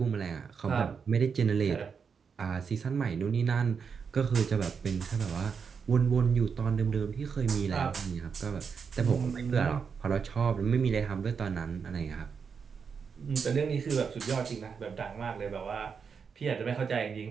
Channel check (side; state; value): left; quieter; 6.1 dB